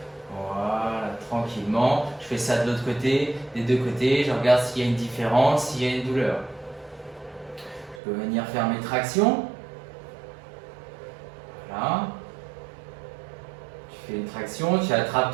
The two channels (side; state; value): left; drops out; at 8.0 s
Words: voilà, tranquillement. Je fais ça de l'autre côté, des deux côtés. Je regarde s'il y a une différence, s'il y a une douleur. Je peux venir faire mes tractions. Voilà. Tu fais une traction, tu attrapes